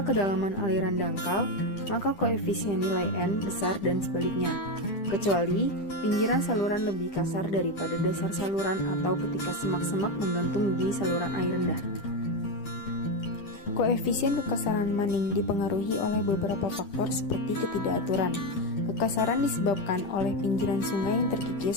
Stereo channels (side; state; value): right; late; 10 ms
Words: kedalaman aliran dangkal, maka koefisien nilai N besar dan sebaliknya, kecuali pinggiran saluran lebih kasar daripada dasar saluran atau ketika semak-semak menggantung di saluran air rendah. Koefisien kekasaran Manning dipengaruhi oleh beberapa faktor seperti ketidakaturan. Kekasaran disebabkan oleh pinggiran sungai yang